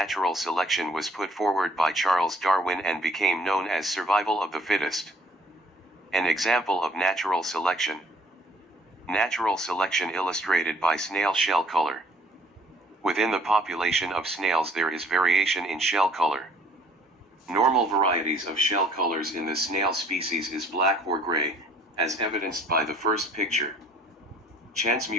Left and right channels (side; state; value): both; normal; correlation 0.58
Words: selection was put forward by Charles Darwin and became known as survival of the fittest. An example of natural selection. Natural selection illustrated by snail shell color. Within the population of snails there is variation in shell color. Normal varieties of shell colors in the snail species is black or gray, as evidenced by the first picture. Chance